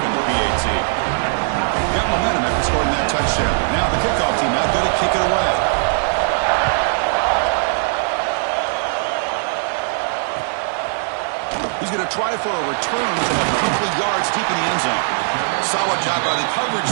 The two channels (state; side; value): silent; left; digital silence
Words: in the PAT. Got momentum after scoring that touchdown. Now the kickoff team out there to kick it away. He's going to try for a return from a couple of yards deep in the end zone. Solid job by the coverage